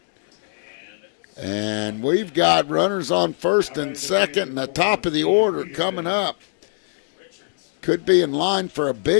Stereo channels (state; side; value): silent; right; digital silence